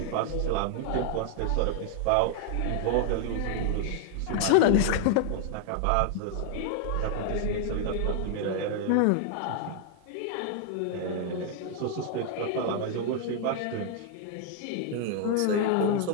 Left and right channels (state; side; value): different; both; correlation 0.00